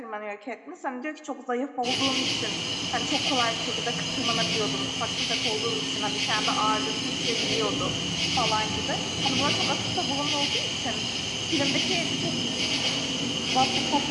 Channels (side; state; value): both; identical; correlation 1.00